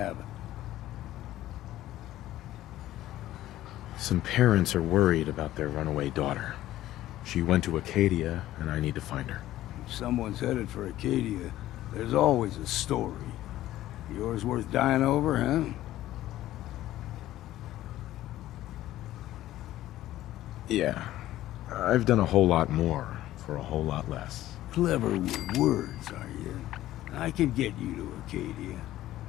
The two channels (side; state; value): right; quieter; 14.4 dB